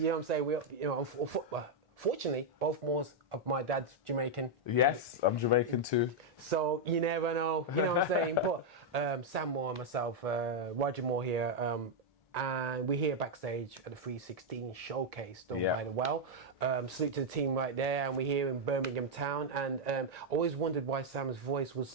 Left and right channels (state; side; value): normal; both; correlation -0.01